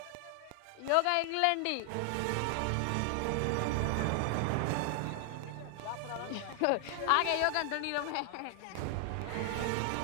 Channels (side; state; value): both; different; correlation 0.00